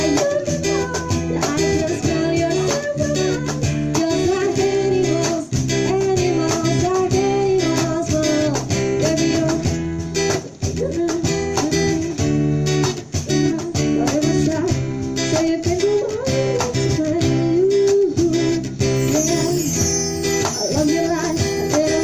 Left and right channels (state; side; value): identical; both; correlation 1.00